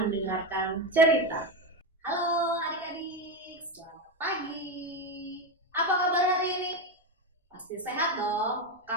mendengarkan cerita. Halo adik-adik, selamat pagi. Apa kabar hari ini? Pasti sehat dong.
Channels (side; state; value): both; normal; correlation 0.13